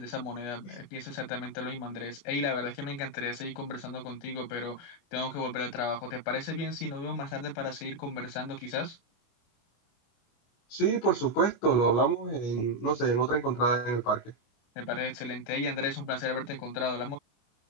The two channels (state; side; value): late; right; 25 ms